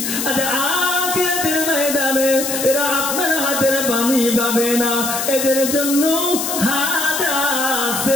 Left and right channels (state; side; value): noise; left; hiss, 3 dB below the sound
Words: আচ্ছা, আখিরাতের ময়দানে এরা আপনার হাতের পানি পাবে না। এদের জন্য হাজা